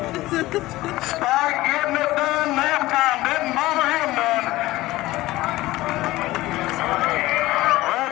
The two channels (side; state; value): right; quieter; 17.7 dB